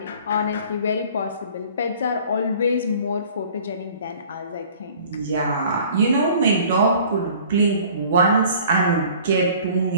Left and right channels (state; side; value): inverted; both; correlation -0.50